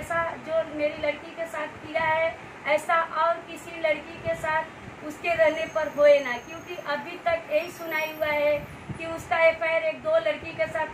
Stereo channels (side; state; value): both; identical; correlation 1.00